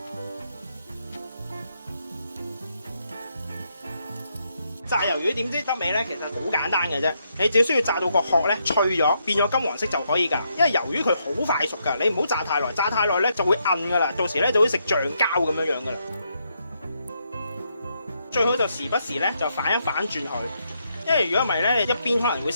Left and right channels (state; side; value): inverted; both; correlation -0.78